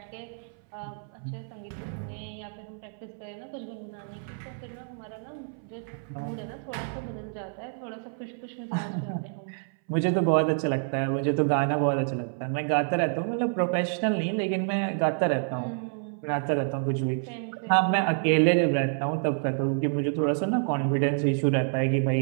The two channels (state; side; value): silent; left; 59 dB below the other